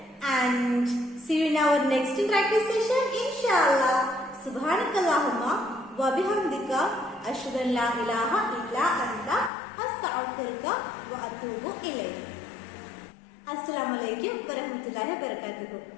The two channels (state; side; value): drops out; right; at 9.5 s